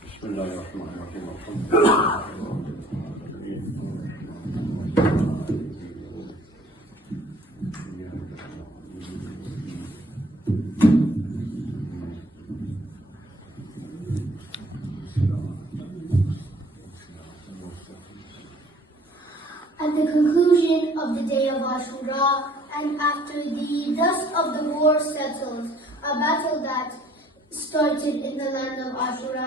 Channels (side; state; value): both; normal; correlation 0.57